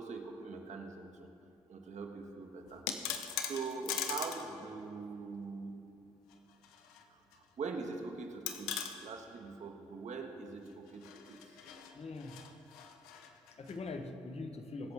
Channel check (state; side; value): normal; both; correlation 0.46